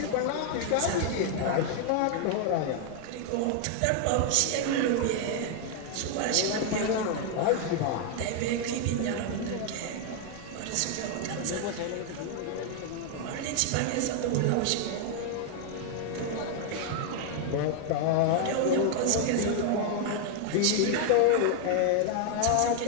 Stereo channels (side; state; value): both; different; correlation 0.00